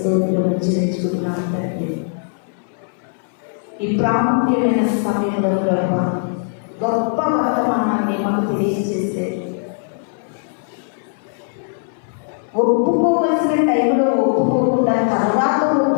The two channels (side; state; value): right; silent; 61 dB below the other